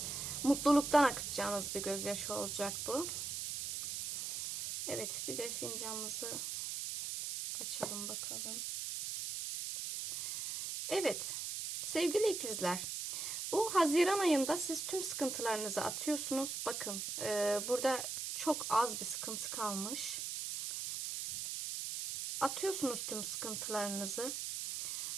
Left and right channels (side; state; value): right; noise; hiss, 4 dB below the sound